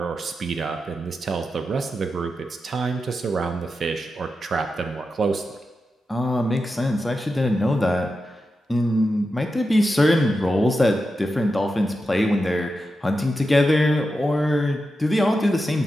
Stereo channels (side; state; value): both; normal; correlation 0.89